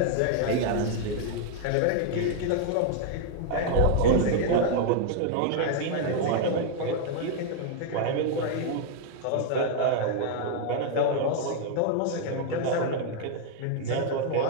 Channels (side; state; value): both; different; correlation 0.00